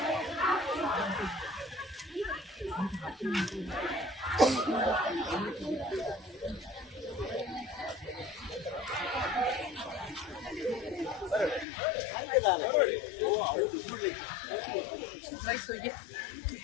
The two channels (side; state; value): right; drops out; at 11.7 s